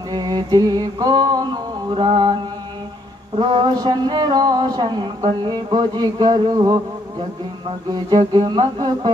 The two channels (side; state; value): both; normal; correlation 0.70